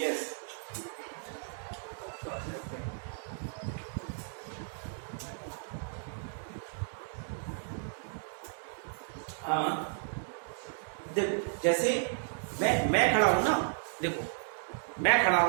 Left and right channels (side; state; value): left; silent; digital silence